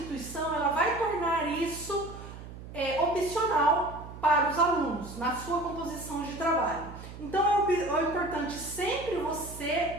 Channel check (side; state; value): right; noise; hum, 13 dB below the sound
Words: ela vai tornar isso opcional para os alunos na sua composição de trabalho. Então é importante sempre